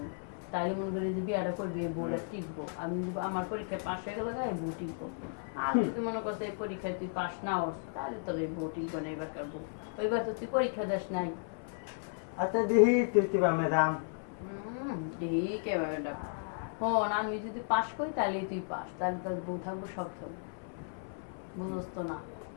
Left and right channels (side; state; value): right; silent; 55 dB below the other